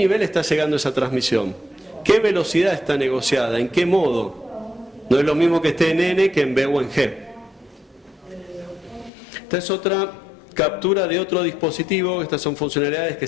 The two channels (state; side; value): drops out; right; at 9.1 s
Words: está llegando esa transmisión? ¿Qué velocidad está negociada? ¿En qué modo? No es lo mismo que esté en N que en B o en G. Esta es otra captura de otro dispositivo. Estas son funcionalidades que